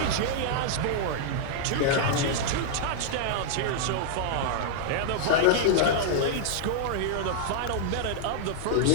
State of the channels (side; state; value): both; different; correlation -0.01